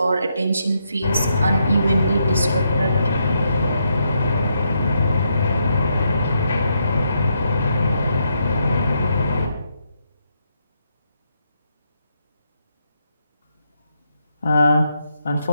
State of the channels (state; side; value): inverted; both; correlation -0.79